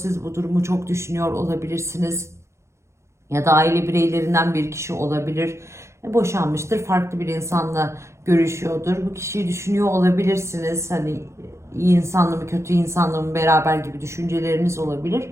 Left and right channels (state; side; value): late; left; 0.14 ms